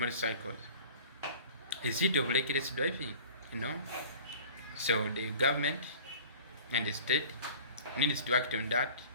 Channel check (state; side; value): inverted; both; correlation -0.43